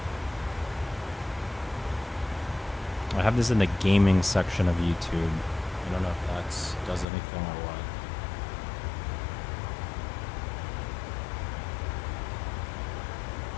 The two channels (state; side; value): drops out; right; at 7.1 s